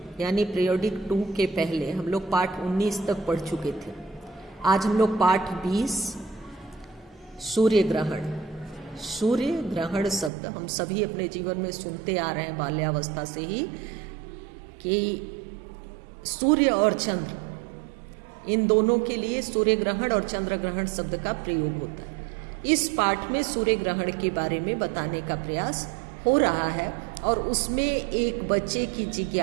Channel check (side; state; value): left; drops out; at 10.3 s